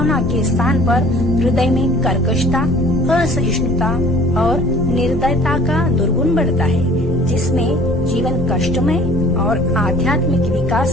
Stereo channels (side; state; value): left; noise; rumble, 14 dB below the sound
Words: के स्थान पर हृदय में कर्कशता, असहिष्णुता और निर्दयता का दुर्गुण बढ़ता है, जिसमें जीवन कष्टमय और आध्यात्मिक